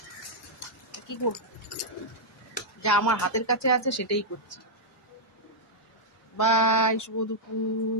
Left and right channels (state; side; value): normal; both; correlation -0.07